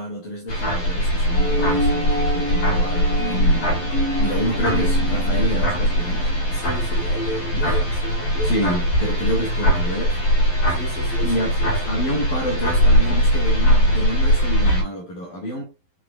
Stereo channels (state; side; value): late; right; 11 ms